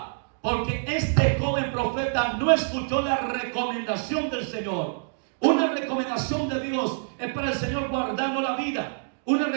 porque este joven profeta no escuchó la recomendación del Señor. Una recomendación de Dios es para el Señor guardarnos la vida. Una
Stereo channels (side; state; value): left; silent; digital silence